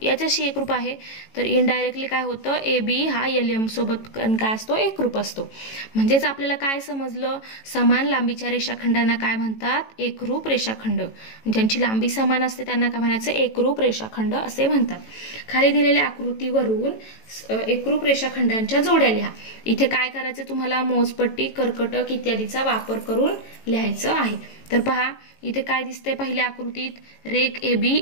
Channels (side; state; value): right; late; 18 ms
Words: याच्याशी एकरूप आहे. तर इनडायरेक्टली काय होतं? AB हा LM सोबत काय असतो? एकरूप असतो. म्हणजेच आपल्याला काय समजलं? समान लांबीच्या रेषाखंडांना काय म्हणतात? एकरूप रेषाखंड. ज्यांची लांबी समान असते त्यांना काय म्हणायचं? एकरूप रेषाखंड असे म्हणतात. खाली दिलेल्या आकृतीवरून एकरूप रेषाखंडांच्या जोड्या लिहा. इथे काय करायचं तुम्हाला? मोजपट्टी, कर्कटक इत्यादीचा वापर करून लिहायचं आहे. तर पहा इथे काय दिसतंय पहिल्या आकृतीत? रेख AB